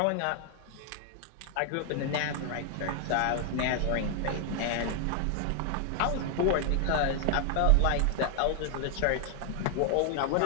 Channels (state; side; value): different; both; correlation 0.00